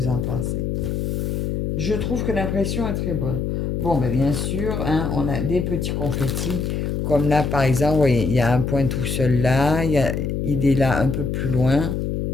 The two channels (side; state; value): left; noise; hum, 1 dB below the sound